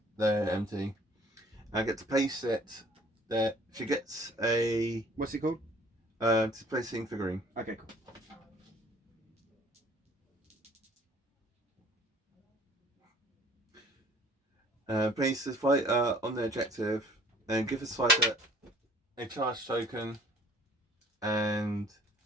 they're empty. I get to place it there. She gets a What's it called? Displacing Figurine. Okay. Cool. Place this fighter on the objective, and give this fighter a charge token, and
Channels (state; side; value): normal; both; correlation 0.53